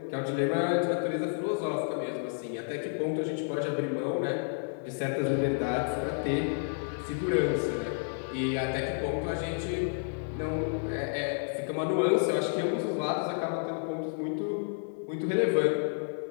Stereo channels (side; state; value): right; silent; digital silence